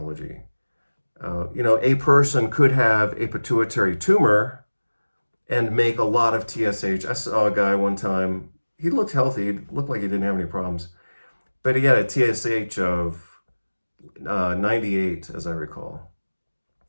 A person could have a pituitary tumor and make a lot of TSH. I saw a guy one time, he looked healthy, he looked like he didn't have any problems, but he had a TSH of 98, as I recall.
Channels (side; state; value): both; inverted; correlation -1.00